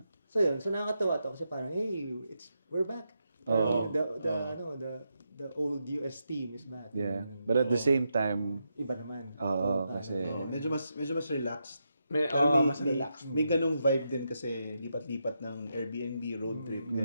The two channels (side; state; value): both; inverted; correlation -0.84